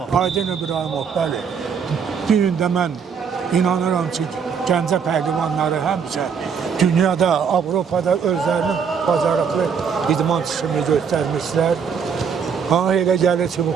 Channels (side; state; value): left; quieter; 6.6 dB